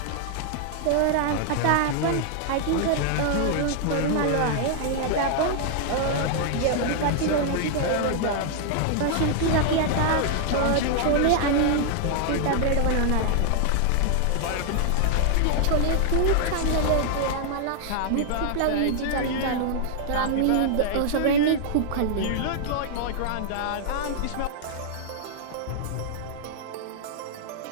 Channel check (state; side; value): different; both; correlation -0.01